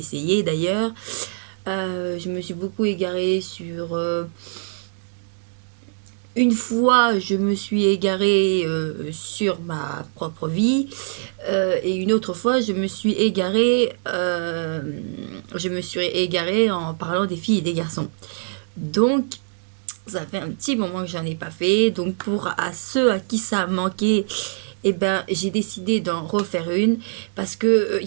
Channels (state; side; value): silent; left; digital silence